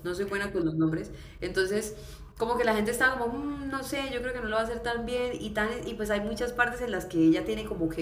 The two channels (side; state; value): both; identical; correlation 1.00